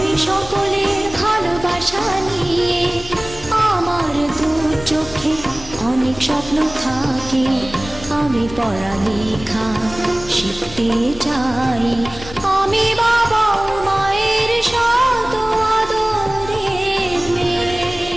সকলের ভালোবাসা নিয়ে। আমার দু চোখে অনেক স্বপ্ন থাকে, আমি পড়ালেখা শিখতে চাই। আমি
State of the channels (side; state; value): left; noise; rumble, 15 dB below the sound